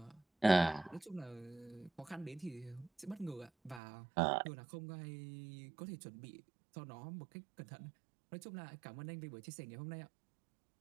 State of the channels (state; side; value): drops out; left; at 3.8 s